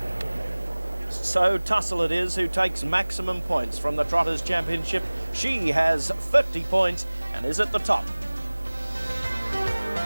So Tussle it is who takes maximum points from the Trotters Championship. She has 50 points and is at the top.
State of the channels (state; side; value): inverted; both; correlation -1.00